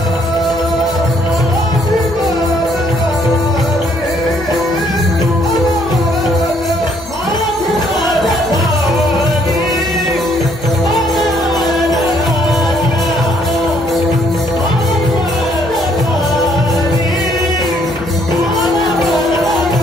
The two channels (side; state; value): left; noise; hum, 18 dB below the sound